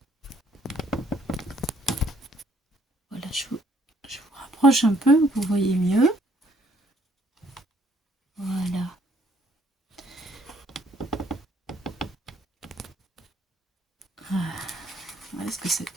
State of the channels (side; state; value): both; normal; correlation 0.65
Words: Voilà, je vous rapproche un peu, vous voyez mieux. Voilà. Voilà ce que ça